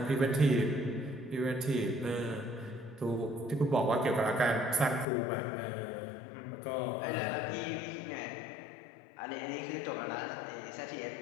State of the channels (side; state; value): right; drops out; at 5.1 s